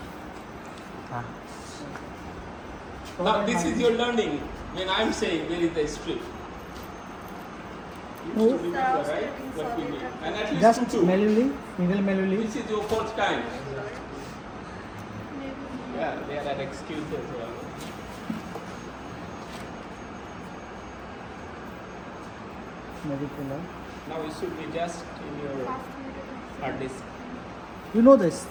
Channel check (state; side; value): identical; both; correlation 1.00